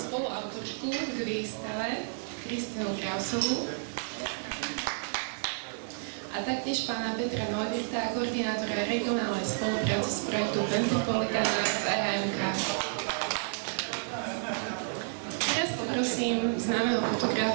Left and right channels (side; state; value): left; silent; digital silence